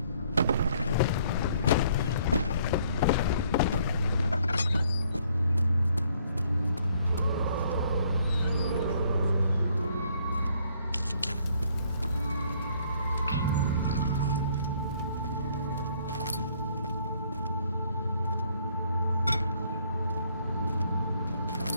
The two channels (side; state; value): both; inverted; correlation -0.65